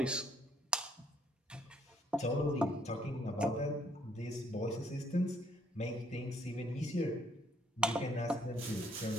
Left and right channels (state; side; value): normal; both; correlation 0.66